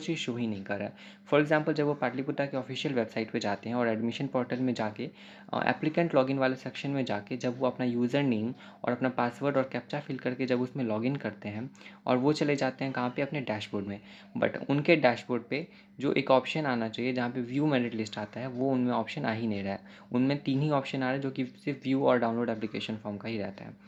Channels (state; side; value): identical; both; correlation 1.00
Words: शो ही नहीं कर रहा है। फॉर एग्जाम्पल, जब वो पाटलिपुत्र के ऑफिशियल वेबसाइट पर जाते हैं और एडमिशन पोर्टल में जाके एप्लीकेंट लॉगिन वाले सेक्शन में जाके जब वो अपना यूज़र नेम और अपना पासवर्ड और कैप्चा फिल करके जब उसमें लॉगिन करते हैं, और वो चले जाते हैं कहाँ पे, अपने डैशबोर्ड में। बट उनके डैशबोर्ड पे जो एक ऑप्शन आना चाहिए जहाँ पे व्यू मेरिट लिस्ट आता है, वो उनमें ऑप्शन आ ही नहीं रहा है। उनमें 3 ही ऑप्शन आ रहे हैं, जो कि सिर्फ व्यू और डाउनलोड एप्लीकेशन फॉर्म का ही रहता है।